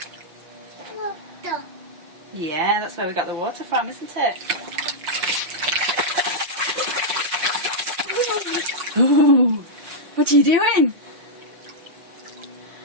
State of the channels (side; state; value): left; late; 6.2 ms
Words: Water. Yeah, that's where we got the water from, isn't it? Ooh, what are you doing?